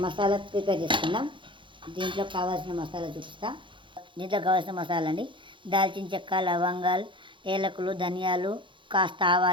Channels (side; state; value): left; late; 0.24 ms